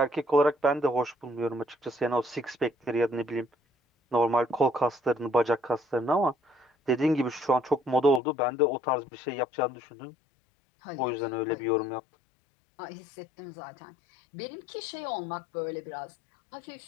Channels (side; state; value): right; drops out; at 8.2 s